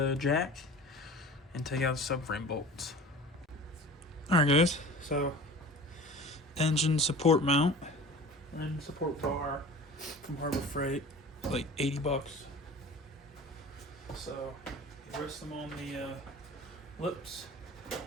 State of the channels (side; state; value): both; normal; correlation 0.40